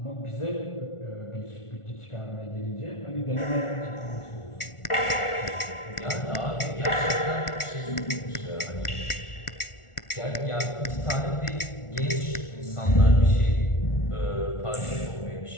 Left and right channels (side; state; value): right; late; 1.4 ms